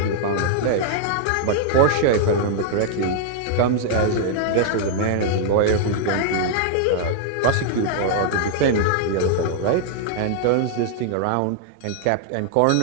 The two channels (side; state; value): both; different; correlation -0.01